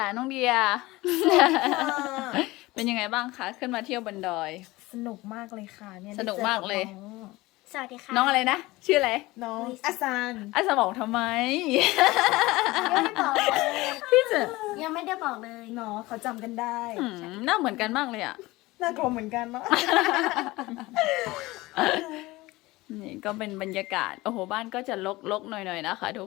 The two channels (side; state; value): right; quieter; 20.1 dB